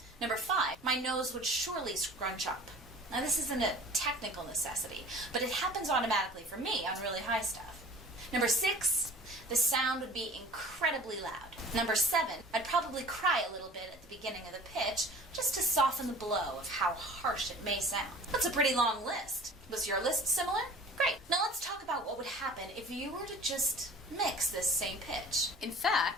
Number 5, my nose would surely scrunch up. Now this isn't a technical necessity, but it happens automatically for me on really high stuff. Number 6, the sound would be incredibly loud. Number 7, I'd probably cry a little bit at the beginning of the pitch just to soften the blow of how harsh it may sound. That's a pretty long list. Was your list similar? Great. Now let's talk about what would happen if you were to just mix this same pitch. In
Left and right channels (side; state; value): both; normal; correlation 0.44